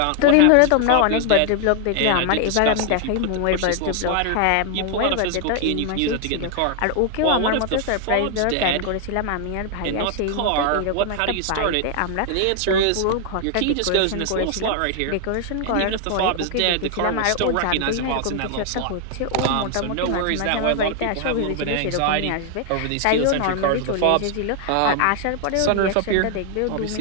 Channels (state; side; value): different; both; correlation 0.00